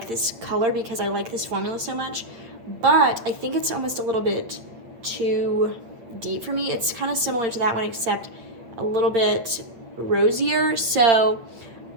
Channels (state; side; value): late; left; 8.6 ms